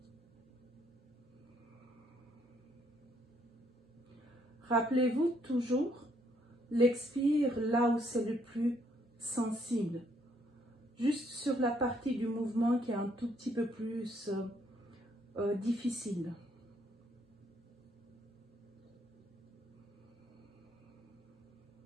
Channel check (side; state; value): both; normal; correlation 0.69